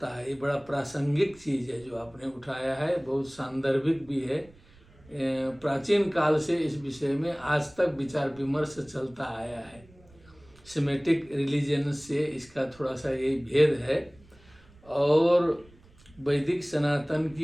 है। ये बड़ा प्रासंगिक चीज है जो आपने उठाया है, बहुत सांदर्भिक भी है। प्राचीन काल से इस विषय में आज तक विचार विमर्श चलता आया है। सेमेटिक रिलीजन से इसका थोड़ा सा यही भेद है, और वैदिक सनातन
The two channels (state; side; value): noise; right; rumble, 27 dB below the sound